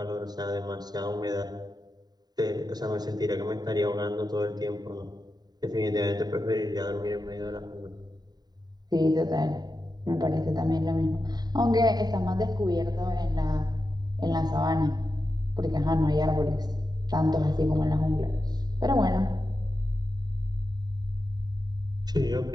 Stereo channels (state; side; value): late; left; 0.20 ms